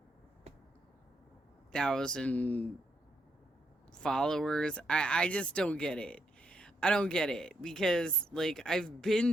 thousand followers. I just don't get it. I don't get it because like I've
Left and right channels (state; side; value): normal; both; correlation 0.78